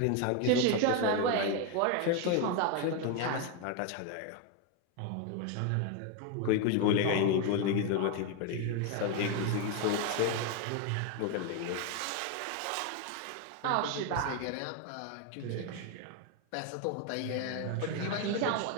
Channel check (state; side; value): different; both; correlation 0.01